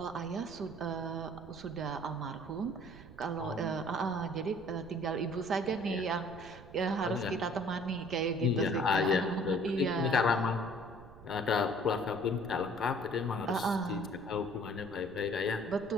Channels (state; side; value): noise; right; rumble, 18 dB below the sound